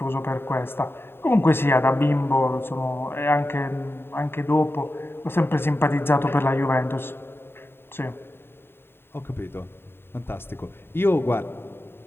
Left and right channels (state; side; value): late; right; 0.11 ms